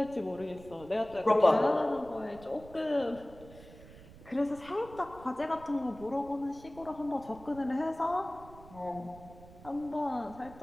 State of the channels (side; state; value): right; noise; rumble, 19 dB below the sound